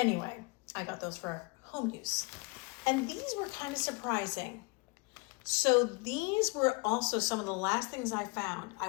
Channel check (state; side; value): quieter; right; 28.8 dB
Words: I got those for home use. And these were kind of surprising. So these were also some of the last things I found. I